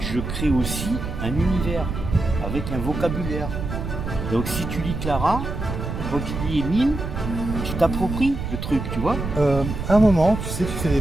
je crée aussi un univers, avec un vocabulaire. Donc si tu lis Clara, quand tu lis Émile, tu t'appropries le truc, tu vois. À un moment, tu sais, tu fais des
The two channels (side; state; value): right; noise; rumble, 5 dB below the sound